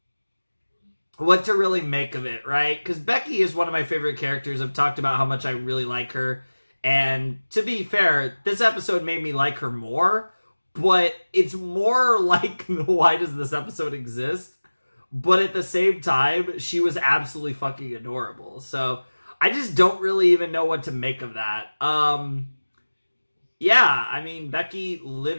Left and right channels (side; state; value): both; inverted; correlation -1.00